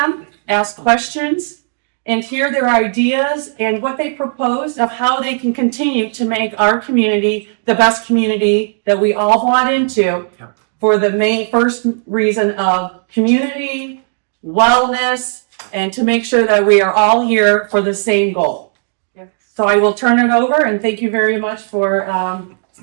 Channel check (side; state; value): left; silent; 66 dB below the other